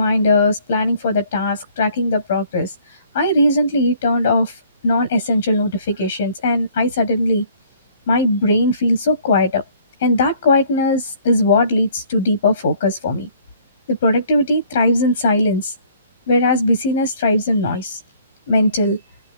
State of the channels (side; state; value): both; inverted; correlation -0.58